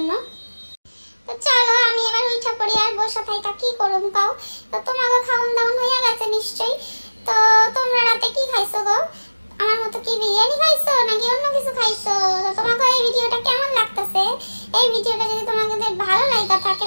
তো চলো আমি এবার উঠা পড়ি, আর বসে থাইকা কি করুম কাও। তো তোমাকে খাওন দাওন হয়ে গেছে নিশ্চয়ই। তো তোমরা রাতে কি খাইছো গো? আমার মতো কি বিরিয়ানি খাইছো নাকি অন্য কিছু খাইছো? তো তোমাকে এই ভিডিওটা কেমন লাগতেছে? এই ভিডিওটা যদি তোমাদের ভালো লাগা থাকে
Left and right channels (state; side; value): inverted; both; correlation -1.00